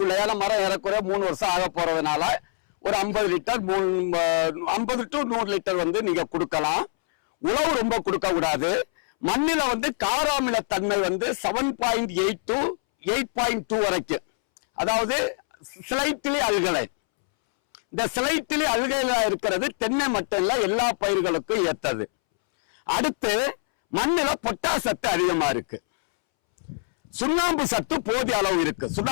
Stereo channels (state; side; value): silent; right; 62 dB below the other